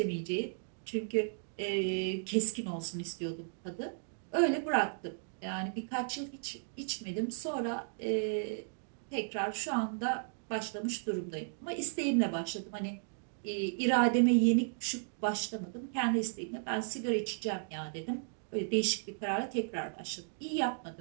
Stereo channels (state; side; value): silent; left; digital silence